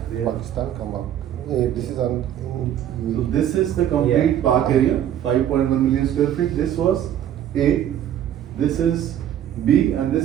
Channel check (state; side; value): quieter; left; 10.7 dB